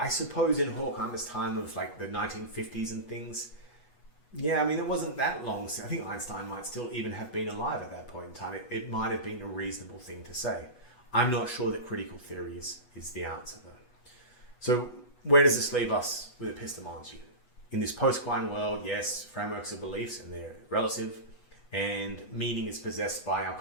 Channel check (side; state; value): right; late; 8.2 ms